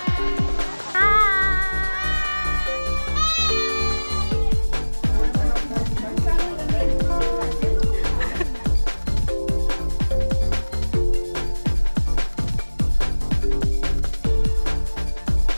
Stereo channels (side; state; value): both; inverted; correlation -1.00